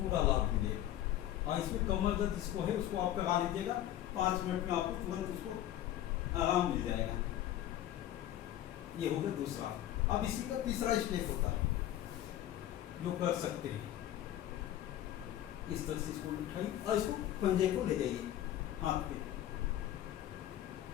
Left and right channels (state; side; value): quieter; right; 12.6 dB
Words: लाभ मिलेगा। और इसमें कमर दर्द जिसको है उसको आप करा लीजिएगा, 5 मिनट में आपको तुरंत उसको आराम मिल जाएगा। ये हो गया दूसरा। अब इसी का तीसरा स्टेप होता है जो कर सकते हैं, इस तरह से इसको उठाइए और इसको पंजे को ले जाइए हाथ पे,